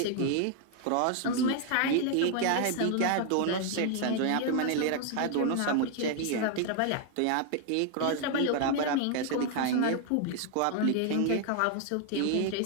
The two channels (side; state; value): both; different; correlation 0.00